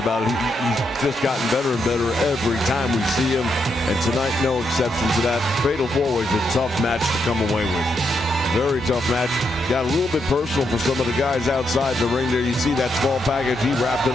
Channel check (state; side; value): normal; both; correlation 0.80